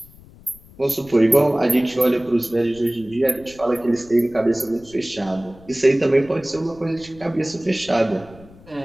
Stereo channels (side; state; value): left; noise; rumble, 23 dB below the sound